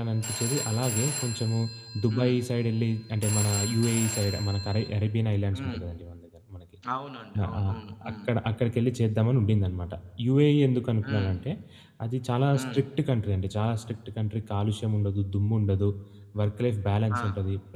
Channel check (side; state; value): both; identical; correlation 1.00